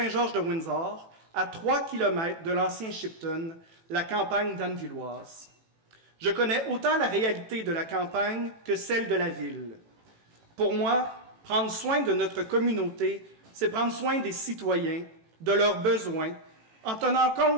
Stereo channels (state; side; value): late; left; 18 ms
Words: à 3 km de l'ancien Shipton, la campagne danvilloise. Je connais autant la réalité de la campagne que celle de la ville. Pour moi, prendre soin de notre communauté, c'est prendre soin des citoyens, de leurs besoins, en tenant